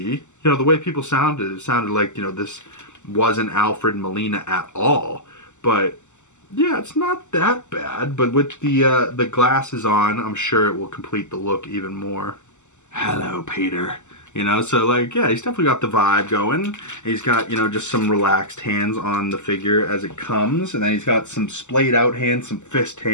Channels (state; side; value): late; right; 0.84 ms